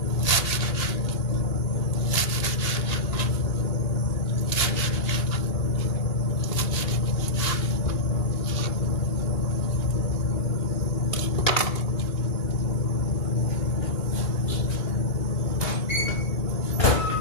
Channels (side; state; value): right; late; 2.8 ms